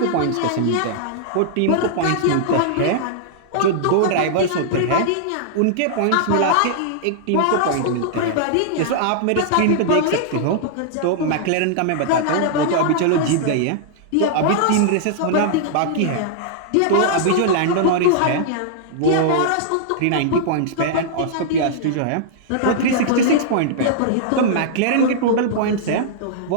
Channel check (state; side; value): different; both; correlation -0.01